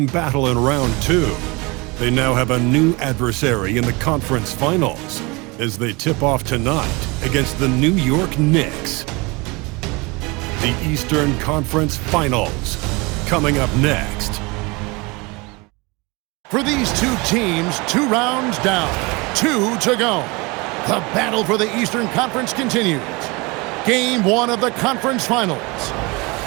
battle in round 2. They now have a new adversary in the conference finals as they tip off tonight against the New York Knicks. The Eastern Conference Finals, coming up next. For these two teams, 2 rounds down, 2 to go. The battle for the Eastern Conference continues. Game 1 of the conference finals.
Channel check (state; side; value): quieter; left; 26.1 dB